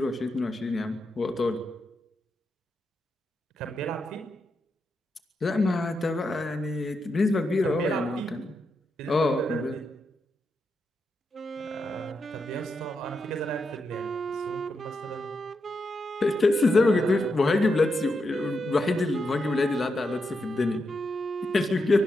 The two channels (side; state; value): both; normal; correlation 0.85